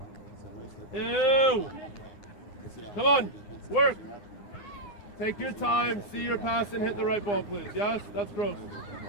Ew. Come on. Work. Take your time. See your pass and hit the right ball, please. Yes? That's gross.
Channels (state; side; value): late; right; 9.5 ms